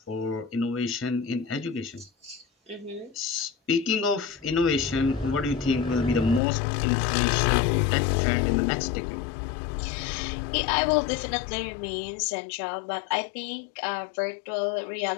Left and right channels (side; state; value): right; drops out; at 6.4 s